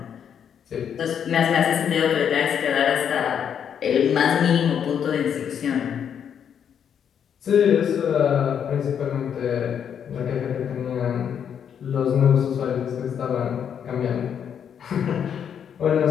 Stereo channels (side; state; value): right; quieter; 8.2 dB